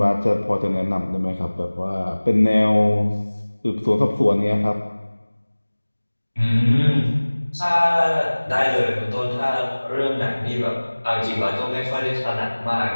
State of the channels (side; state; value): both; inverted; correlation -1.00